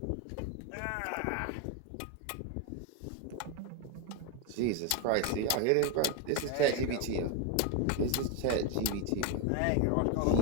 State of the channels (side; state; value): both; different; correlation 0.01